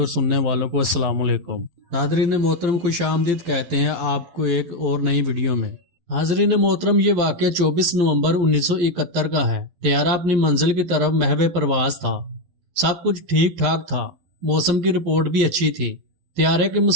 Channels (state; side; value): late; left; 12 ms